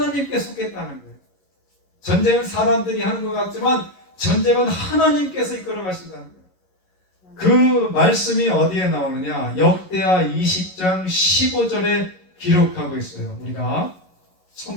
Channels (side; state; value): right; late; 11 ms